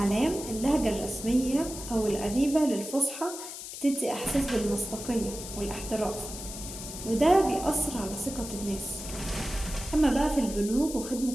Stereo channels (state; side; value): noise; left; hiss, 10 dB below the sound